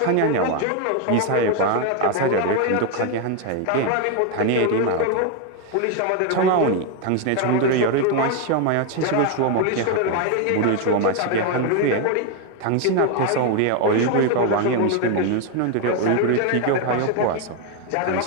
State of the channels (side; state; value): both; different; correlation 0.01